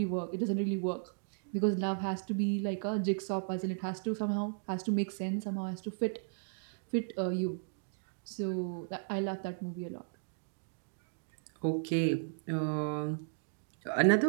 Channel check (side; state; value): left; silent; digital silence